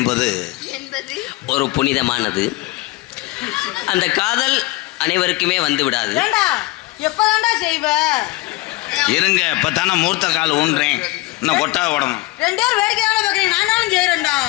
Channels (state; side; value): quieter; right; 20.7 dB